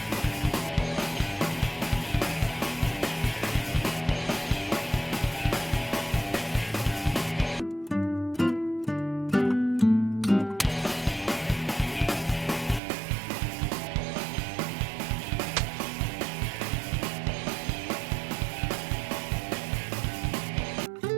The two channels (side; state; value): left; drops out; at 12.8 s